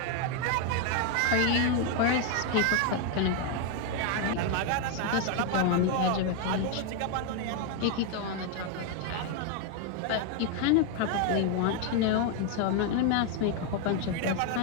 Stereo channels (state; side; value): different; both; correlation 0.01